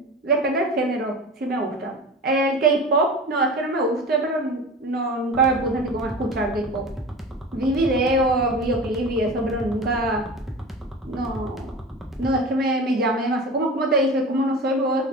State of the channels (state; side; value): normal; both; correlation 0.33